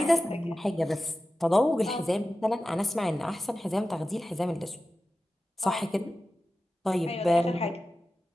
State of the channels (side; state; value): both; normal; correlation 0.94